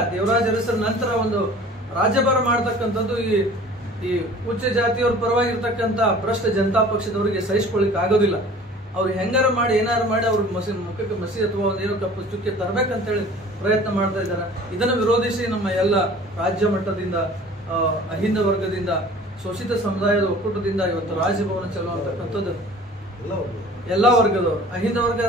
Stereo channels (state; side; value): normal; both; correlation 0.46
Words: ದೇವರಾಜ ಅರಸರ ನಂತರ ಒಂದು ರಾಜ್ಯಭಾರ ಮಾಡ್ತಕ್ಕಂಥದ್ದು ಈ ಉಚ್ಚ ಜಾತಿಯವ್ರ ಪರವಾಗಿರ್ತಕ್ಕಂಥ ಭ್ರಷ್ಟ ಜನತಾ ಪಕ್ಷದವರಿಗೆ ಸಹಿಸಿಕೊಳ್ಳಿಕ್ ಆಗೋದಿಲ್ಲ. ಅವ್ರು ಹೆಂಗಾರ ಮಾಡಿ ಏನಾರು ಮಾಡಿ ಅವ್ರ ಮುಖಕ್ಕೆ ಮಸಿ ಅಥವಾ ಒಂದೇನೋ ಕಪ್ಪು ಚುಕ್ಕೆ ತರಬೇಕಂತೇಳಿ ಪ್ರಯತ್ನ ಮಾಡ್ತಾ ಇದ್ದಾರೆ. ಇದನ್ನು ವಿರೋಧಿಸಿ ನಮ್ಮ ಎಲ್ಲ ರಾಜ್ಯ ಮಟ್ಟದಿಂದ, ಅಹಿಂದ ವರ್ಗದಿಂದ, ಶೋಷಿತ ಸಮುದಾಯದ ಒಕ್ಕೂಟದಿಂದ ಇವತ್ತು ರಾಜಭವನ ಚಲೋ ಅಂತಕ್ಕಂಥದ್ದು ಎಲ್ಲಾ ವರ್ಗದವರು, ಅಹಿಂದ ವರ್ಗ